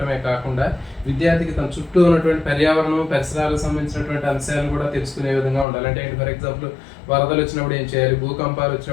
కాకుండా విద్యార్థికి తన చుట్టూ ఉన్నటువంటి పర్యావరణం, పరిసరాలకు సంబంధించినటువంటి అంశాలను కూడా తెలుసుకునే విధంగా ఉండాలి. అంటే ఏంటి, ఫర్ ఎగ్జాంపుల్ వరదలు వచ్చినప్పుడు ఏం చేయాలి, భూకంపాలు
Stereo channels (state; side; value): drops out; right; at 5.7 s